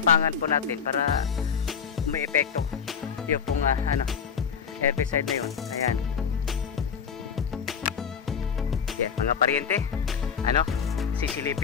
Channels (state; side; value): quieter; right; 6.8 dB